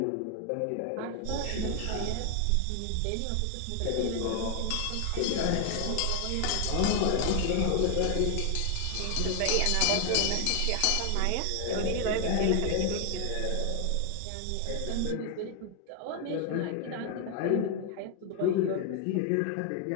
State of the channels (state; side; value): different; both; correlation 0.00